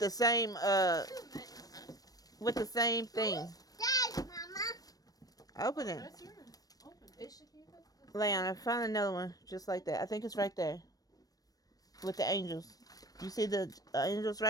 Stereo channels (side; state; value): right; late; 0.18 ms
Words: the same thing. Dad, Mama. Open it. That's yours. Open. Leon, I found another one just like that. I think it's right there. With the angels. You see the angels